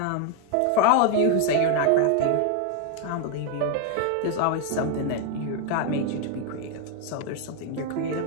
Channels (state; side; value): different; both; correlation 0.01